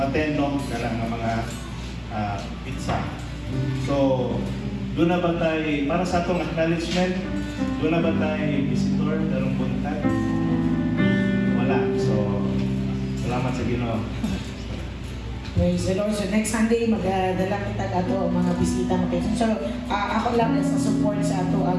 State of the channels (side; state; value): both; identical; correlation 1.00